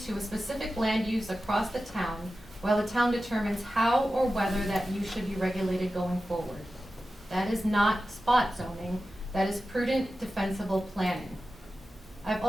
to a specific land use across the town, while the town determines how or whether that use should be regulated going forward. That is not spot zoning, that is prudent, defensible planning. I've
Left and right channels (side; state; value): both; normal; correlation 0.93